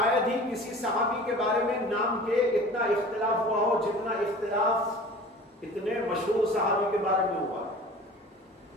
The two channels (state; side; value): normal; both; correlation 0.42